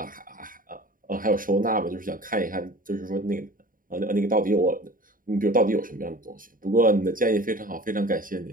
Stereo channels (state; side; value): late; left; 0.40 ms